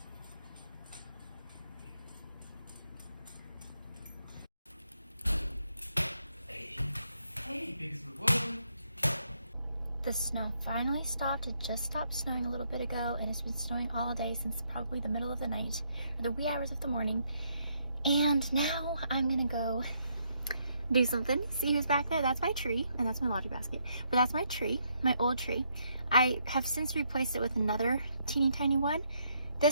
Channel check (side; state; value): both; inverted; correlation -0.74